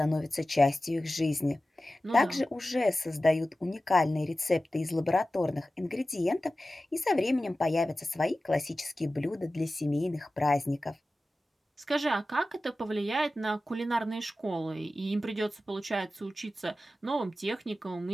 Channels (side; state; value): both; normal; correlation 0.95